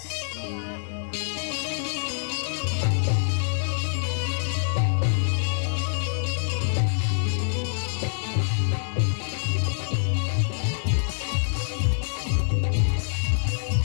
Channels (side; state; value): right; silent; 60 dB below the other